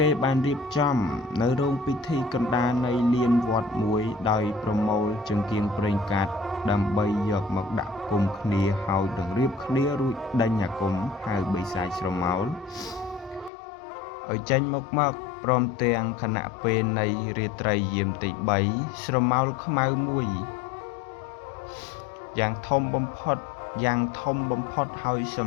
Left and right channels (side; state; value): right; drops out; at 13.5 s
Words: េបានរៀបចំនៅរោងពិធីកណ្ដាលនៃលានវត្តមួយដោយប្រមូលចង្គៀងប្រេងកាតដើម្បីយកមកដាក់គុំគ្នាហើយនឹងរៀបគ្នារួចដេញអាគមហៅបីសាចស្រមោលឲ្យចេញមកព្រមទាំងគណៈពេលនៃរាត្រីយាមទី3ស្រមោលខ្មៅមួយយ៉ាងធំបំផុតហើយស